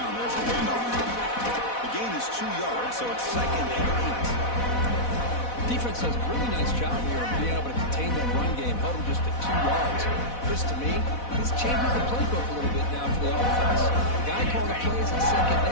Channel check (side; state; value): right; late; 4.1 ms